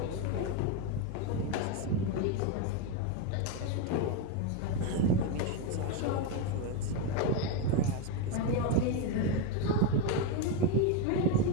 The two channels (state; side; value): different; both; correlation 0.03